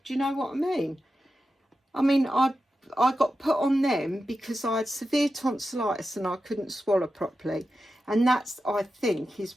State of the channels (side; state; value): both; normal; correlation 0.91